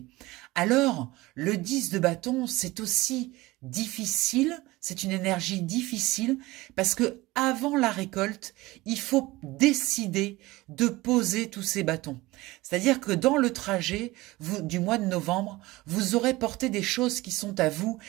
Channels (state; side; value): quieter; left; 19.9 dB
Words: Alors, le 10 de bâton, c'est aussi difficile, c'est une énergie difficile parce que avant la récolte, il faut décider de poser tous ces bâtons. C'est-à-dire que dans le trajet du mois de novembre, vous aurez porté des choses qui sont à vous